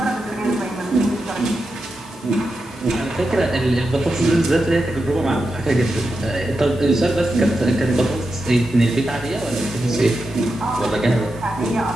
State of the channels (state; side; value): normal; both; correlation 0.88